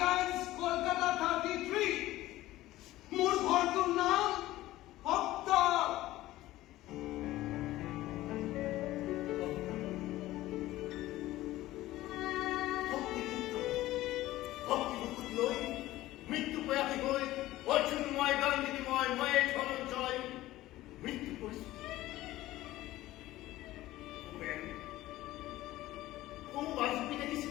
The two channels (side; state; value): right; quieter; 16.2 dB